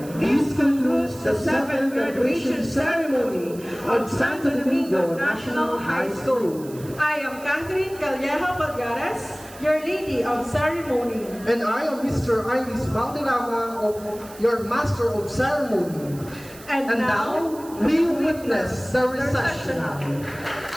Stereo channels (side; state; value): right; noise; hiss, 20 dB below the sound